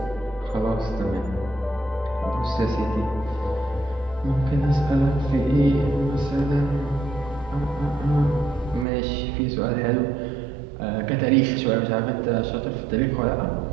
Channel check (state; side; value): drops out; left; at 8.8 s